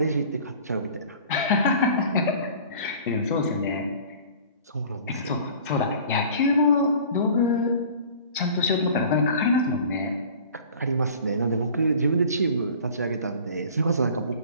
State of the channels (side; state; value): both; inverted; correlation -0.45